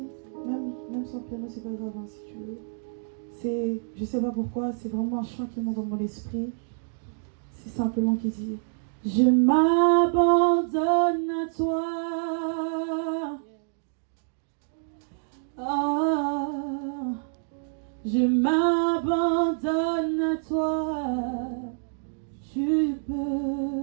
même sans piano, c'est pas grave hein, si tu veux. Je sais pas pourquoi, c'est vraiment un chant qui monte dans mon esprit. C'est simplement qui dit: je m'abandonne à toi. Ah, je m'abandonne à toi. Tu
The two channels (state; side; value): silent; left; digital silence